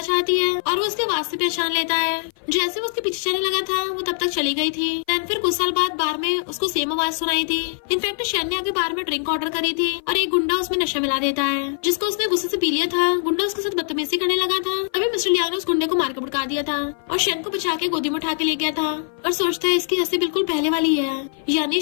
जाती है और वो उसके आवाज से पहचान लेता है। जैसे वो उसके पीछे चलने लगा था वो तब तक चली गई थी। देन फिर कुछ साल बाद बार में उसको सेम आवाज सुनाई थी। इनफैक्ट शैन ने आगे बार में ड्रिंक ऑर्डर करी थी और एक गुंडा उसमें नशा मिला देता है, जिसको उसने गुस्से से पी लिया था। गुंडा उसके साथ बदतमीजी करने लगा था। तभी मिस्टर लियांग ने उस गुंडे को मार के भड़का दिया था और शैन को बचा के गोदी में उठा के ले गया था। और सोचता है इसकी हंसी बिल्कुल पहले वाली है, यानी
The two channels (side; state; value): right; silent; 55 dB below the other